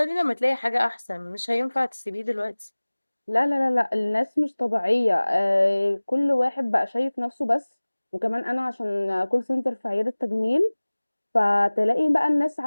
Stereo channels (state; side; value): inverted; both; correlation -1.00